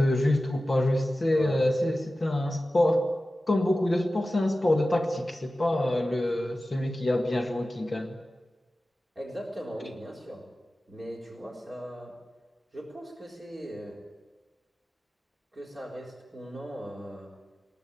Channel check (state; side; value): normal; both; correlation 0.95